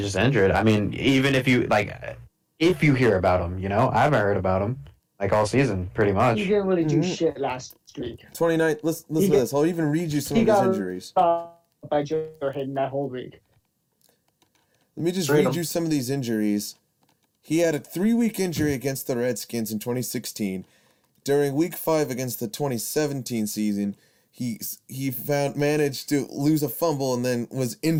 injured. I mean, even if you hear about him, I haven't heard about him all season, pretty much. He didn't really do shit last week. 29. Listen to this. I'll even read you some of his injuries. By Joe Hayden that whole week. Let me just read you some of these injuries. He had a 3-week injury against the Redskins in 2016. During Week 5 against the 2017 season, he managed to lose a fumble and then was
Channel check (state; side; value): identical; both; correlation 1.00